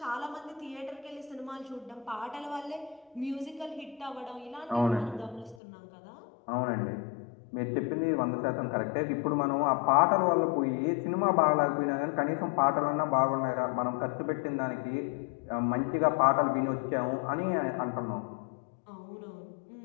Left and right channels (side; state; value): right; drops out; at 5.6 s